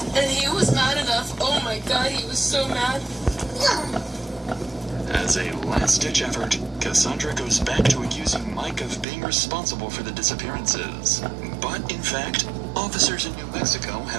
and he was mad enough. Oh my God, he was so mad. As a last-ditch effort, Cassandra goes back to accusing Mike of being responsible for the disappearances. But, in fact, officers in New Mexico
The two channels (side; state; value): left; drops out; at 9.1 s